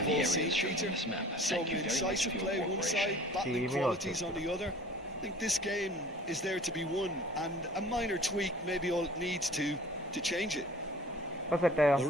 the all seen, areas shown Peter. on this map. Some Thank you very much incisive for your play one cooperation. side, battling qualities on the other. I think this game is there to be won, and a minor tweak maybe all it needs to change it. ഇപ്പൊ സെറ്റായോ?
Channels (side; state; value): both; normal; correlation 0.47